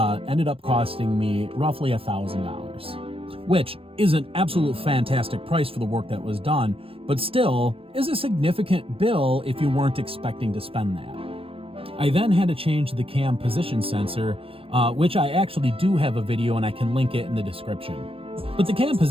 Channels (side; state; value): left; late; 0.27 ms